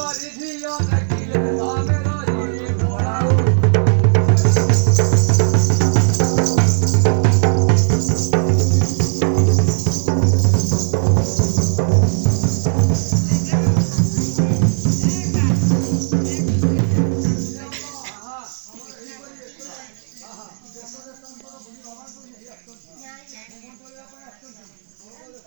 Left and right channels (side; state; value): left; silent; digital silence